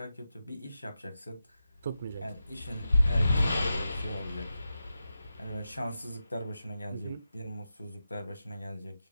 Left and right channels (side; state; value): both; inverted; correlation -0.90